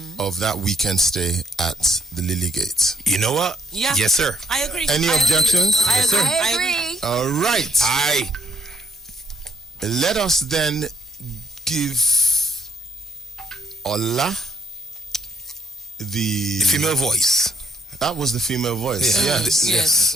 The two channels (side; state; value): both; normal; correlation 0.69